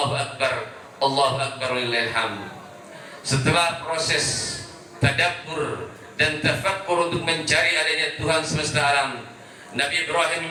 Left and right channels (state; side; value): identical; both; correlation 1.00